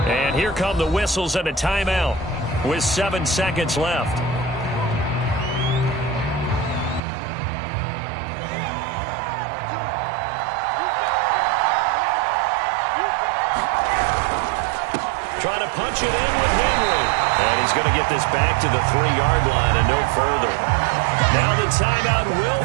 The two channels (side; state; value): left; drops out; at 7.0 s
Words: And here come the whistles and a timeout with 7 seconds left. Trying to punch it in with Henry. And he's going to get this back to the 3-yard line and no further. Now the timeout